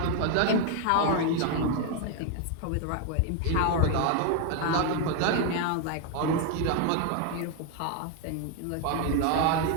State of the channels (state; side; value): different; both; correlation 0.01